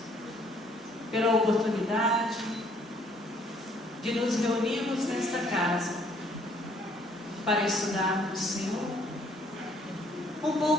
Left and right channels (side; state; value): both; normal; correlation 0.63